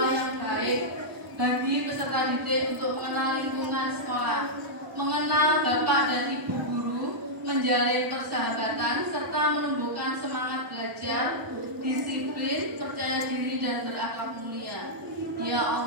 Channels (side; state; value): left; late; 1.0 ms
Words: yang baik bagi peserta didik untuk mengenal lingkungan sekolah, mengenal Bapak dan Ibu guru, menjalin persahabatan, serta menumbuhkan semangat belajar, disiplin, percaya diri, dan berakhlak mulia. Ya